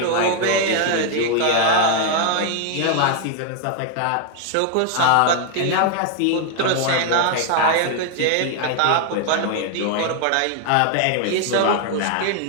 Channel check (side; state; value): both; different; correlation 0.00